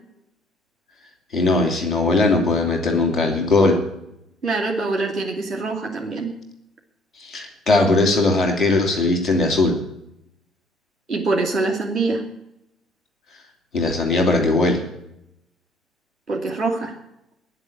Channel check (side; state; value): both; normal; correlation 0.59